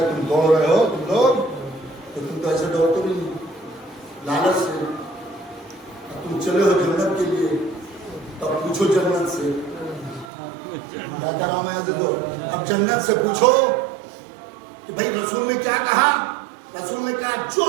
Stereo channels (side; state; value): left; drops out; at 10.3 s